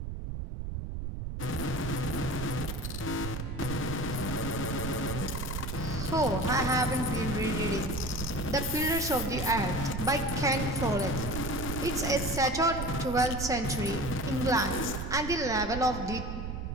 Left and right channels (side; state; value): right; noise; rumble, 5 dB below the sound